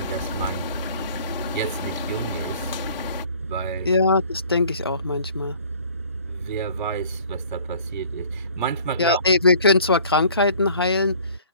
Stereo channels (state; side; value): inverted; both; correlation -0.52